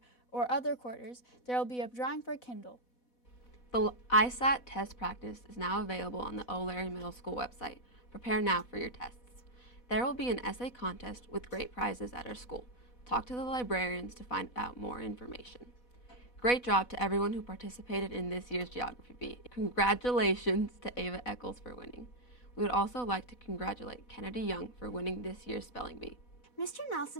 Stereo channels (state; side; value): late; right; 4.1 ms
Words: or other quarters, there will be a drawing for a Kindle. The ISAT test practice is now available on the O'Leary Middle School website. Prepare now for your tests. There will be an essay contest with great prizes at our school. Talk to the librarians to find out more information. Great job to everyone who participated in this year's Geography Bee. Congratulations to Ava Eccles for winning. We would also like to congratulate Kennedy Young for winning this year's Spelling Bee. Mr.